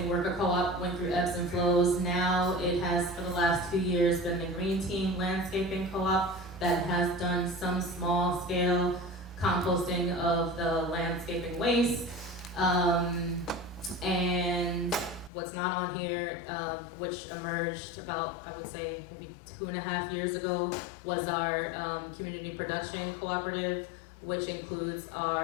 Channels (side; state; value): right; drops out; at 15.3 s